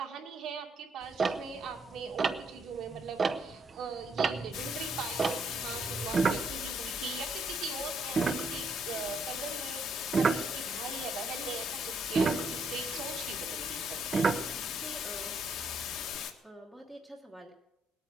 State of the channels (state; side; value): normal; both; correlation 0.72